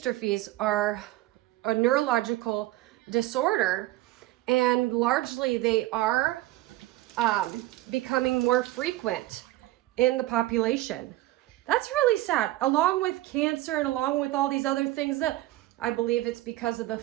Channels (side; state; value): left; quieter; 16.8 dB